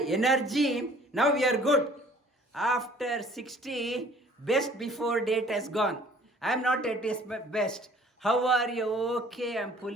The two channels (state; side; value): normal; both; correlation 0.54